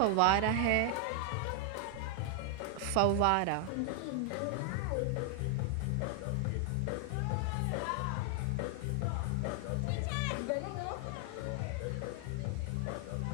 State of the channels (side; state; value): both; different; correlation 0.00